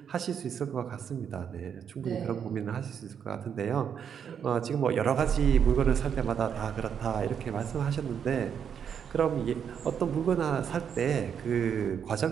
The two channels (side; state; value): left; quieter; 7.8 dB